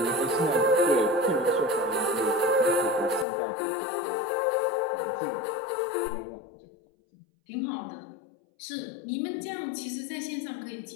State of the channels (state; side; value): drops out; right; at 3.2 s